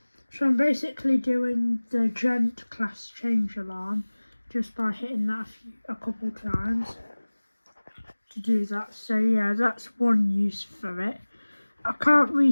So I'm basically doing the Gent class change alarm just by hitting that a couple times to do that. So yeah, that's one use for it. I can't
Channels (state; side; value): inverted; both; correlation -1.00